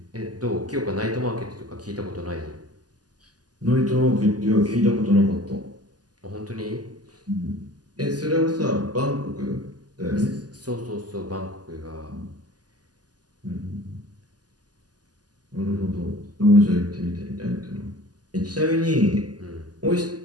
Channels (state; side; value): late; left; 0.68 ms